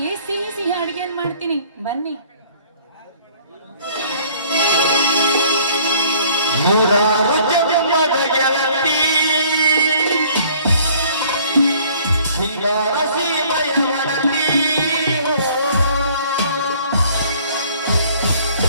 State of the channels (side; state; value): both; inverted; correlation -0.57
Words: ಸಿಹಿ ಸಿಹಿ ಅಡಿಗೆಯನ್ನು ಮಾಡ್ತೀನಿ, ಬನ್ನಿ.